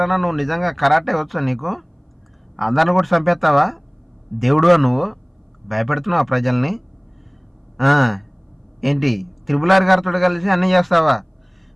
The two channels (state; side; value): identical; both; correlation 1.00